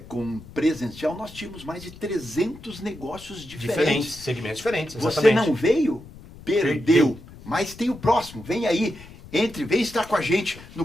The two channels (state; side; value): noise; left; rumble, 18 dB below the sound